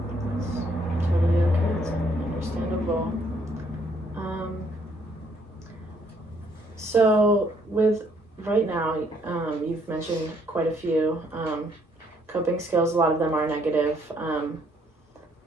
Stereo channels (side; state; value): both; normal; correlation 0.68